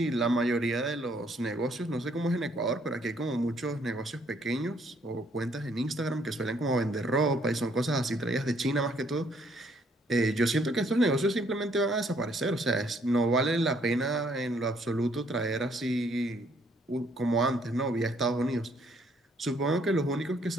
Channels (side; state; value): both; normal; correlation 0.67